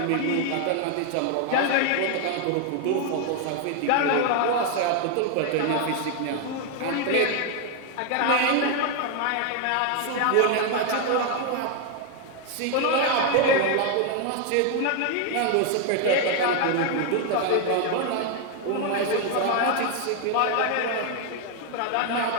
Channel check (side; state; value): both; different; correlation 0.01